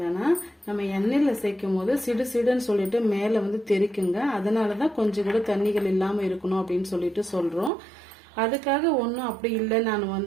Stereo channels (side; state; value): left; drops out; at 7.7 s